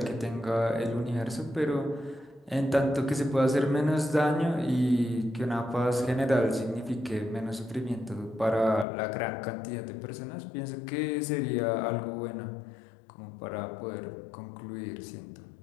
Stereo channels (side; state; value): right; drops out; at 8.8 s